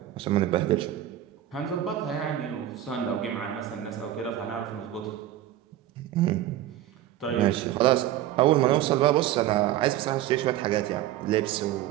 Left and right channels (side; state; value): left; quieter; 12.7 dB